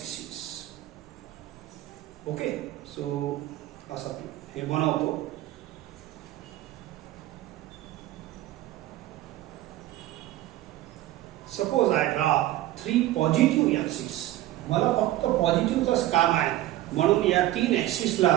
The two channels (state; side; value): quieter; left; 15.1 dB